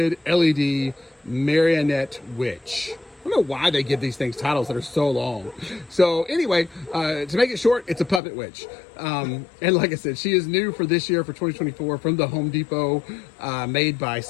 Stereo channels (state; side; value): drops out; right; at 8.2 s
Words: LED Marionette Witch. I don't know why they give these things titles that are so long. So anyway, to make it short, it's a puppet witch. And like I said, she is new for this year, for 2024, from the Home Depot, made by